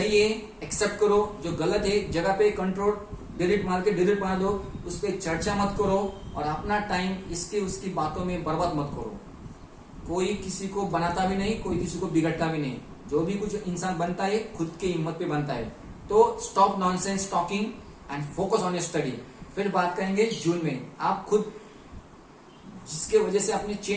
है एक्सेप्ट करो, जो गलत है जगह पे कंट्रोल डिलीट मार के डिलीट मार दो, उस पर चर्चा मत करो और अपना टाइम इसकी उसकी बातों में बर्बाद मत करो। कोई किसी को बनाता भी नहीं, कोई किसी को बिगड़ता भी नहीं। जो भी कुछ इंसान बनता है खुद की हिम्मत पे बनता है। तो stop nonsense talking and focus on your study. फिर बात करेंगे जून में। आप खुद जिसके वजह से अपने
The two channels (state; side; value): identical; both; correlation 1.00